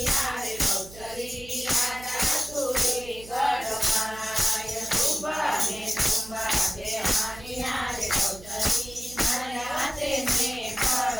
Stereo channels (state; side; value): noise; right; hum, 18 dB below the sound